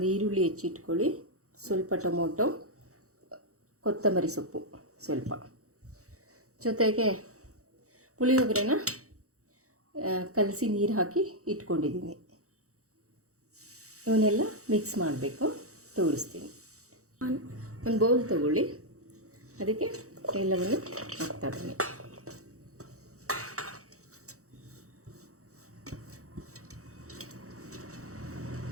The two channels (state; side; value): late; left; 0.65 ms